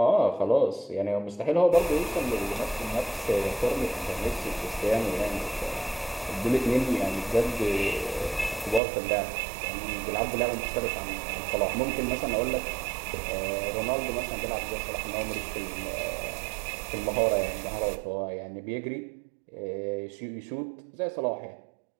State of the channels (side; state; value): left; drops out; at 8.8 s